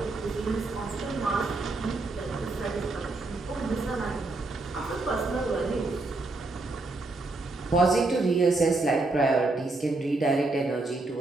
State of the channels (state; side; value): quieter; left; 3.2 dB